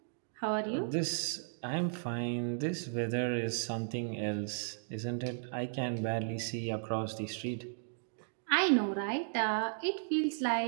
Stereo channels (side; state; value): left; silent; digital silence